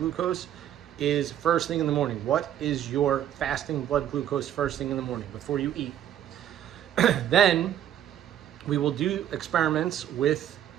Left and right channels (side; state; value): left; quieter; 10.8 dB